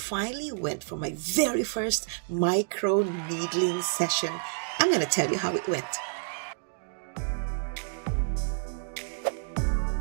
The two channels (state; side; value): silent; left; digital silence